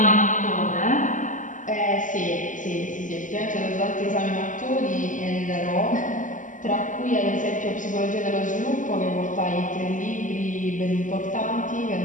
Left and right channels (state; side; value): late; right; 0.37 ms